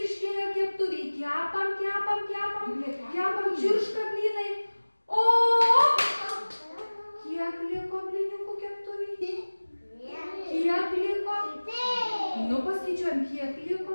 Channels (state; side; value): inverted; both; correlation -1.00